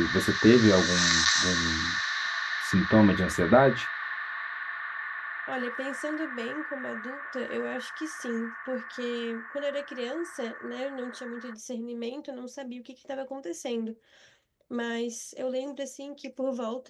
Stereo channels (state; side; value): identical; both; correlation 1.00